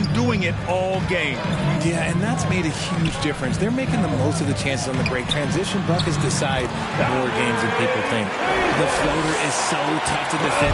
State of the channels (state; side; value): identical; both; correlation 1.00